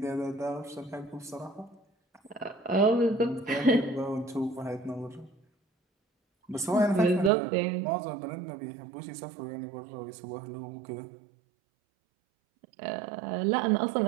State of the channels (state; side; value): drops out; left; at 7.3 s